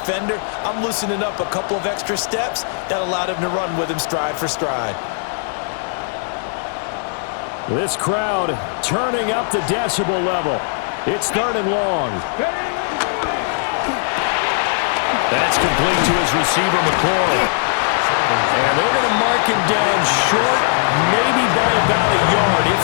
I'm loosening up a couple of extra steps that allowed him to run with him stride for stride. This crowd turning up the decibel level. It's 3rd and long. That's complete to his receiver, McCoy. And they're going to mark him down short, maybe by about a yard,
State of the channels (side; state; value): right; silent; digital silence